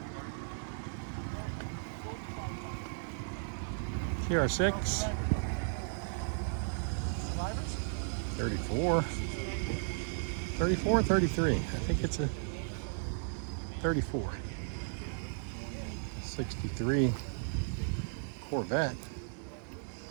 TR6. 34. 34 or 33? I think it's a 34. 63 Corvette.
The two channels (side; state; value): left; silent; digital silence